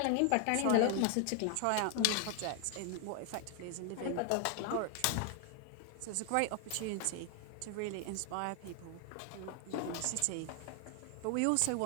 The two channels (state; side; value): different; both; correlation 0.00